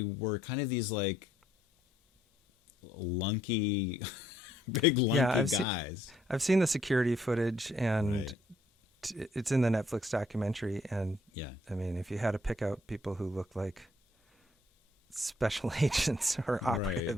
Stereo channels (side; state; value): both; normal; correlation 0.68